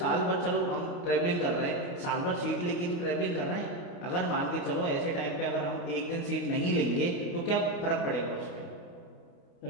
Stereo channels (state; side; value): late; right; 29 ms